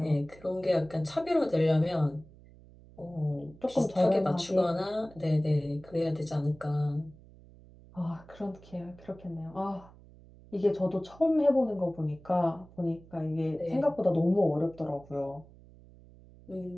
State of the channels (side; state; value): right; noise; hum, 22 dB below the sound